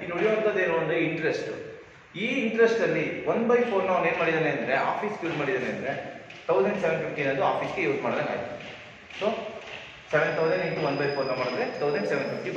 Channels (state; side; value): identical; both; correlation 1.00